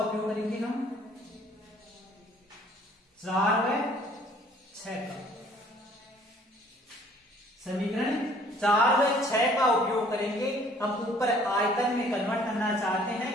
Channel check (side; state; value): both; normal; correlation 0.57